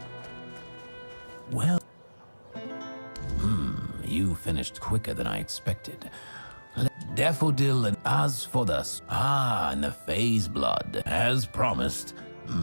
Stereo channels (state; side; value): inverted; both; correlation -1.00